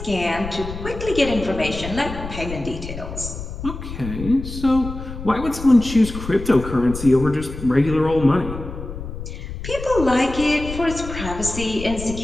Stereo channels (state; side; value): noise; left; rumble, 9 dB below the sound